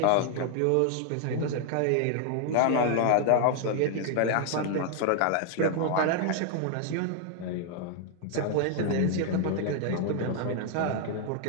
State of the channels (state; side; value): different; both; correlation 0.00